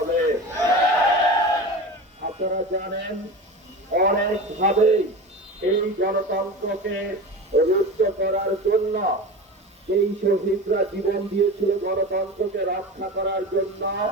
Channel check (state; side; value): normal; both; correlation 0.30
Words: আপনারা জানেন, অনেকভাবেই এই গণতন্ত্রকে রুদ্ধ করার জন্য এই শহীদরা জীবন দিয়েছিল গণতন্ত্রকে রক্ষা করার জন্য,